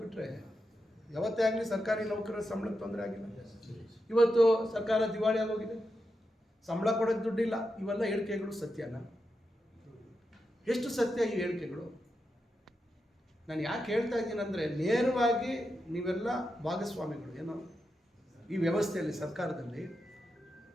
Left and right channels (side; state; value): both; normal; correlation 0.87